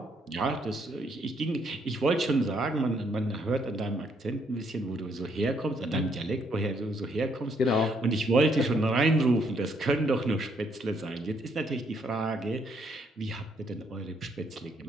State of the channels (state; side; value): normal; both; correlation 0.71